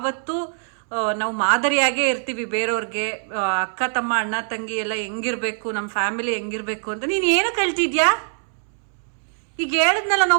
ನಾವು ಮಾದರಿಯಾಗೇ ಇರ್ತೀವಿ ಬೇರೆಯವ್ರಿಗೆ. ಅಕ್ಕ ತಮ್ಮ ಅಣ್ಣ ತಂಗಿ ಎಲ್ಲ ಹೆಂಗಿರ್ಬೇಕು, ನಮ್ಮ ಫ್ಯಾಮಿಲಿ ಹೆಂಗಿರ್ಬೇಕು ಅಂತ. ನೀನ್ ಏನು ಕಳ್ತಿದ್ಯಾ? ಈಗ ಹೇಳಿದ್ನಲ್ಲ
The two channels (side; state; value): left; silent; 64 dB below the other